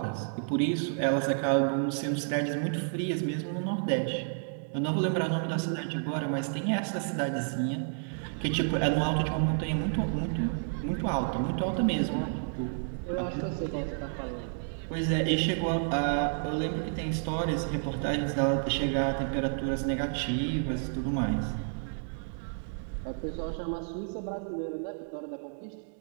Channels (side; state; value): left; silent; digital silence